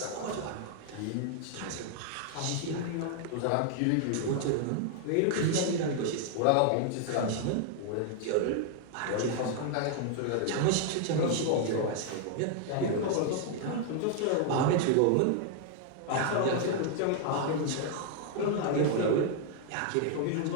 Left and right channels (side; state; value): both; different; correlation 0.00